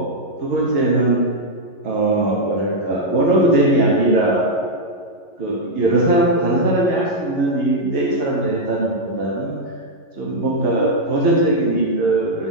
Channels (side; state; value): right; late; 11 ms